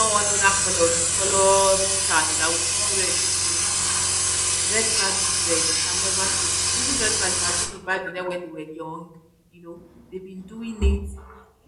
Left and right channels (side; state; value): both; identical; correlation 1.00